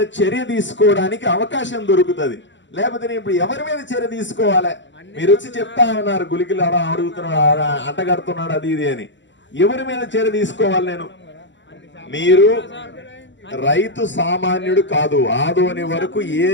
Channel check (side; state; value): right; late; 0.53 ms